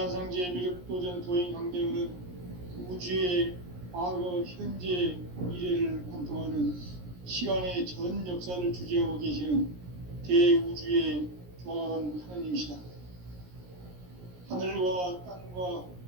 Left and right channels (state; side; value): late; left; 17 ms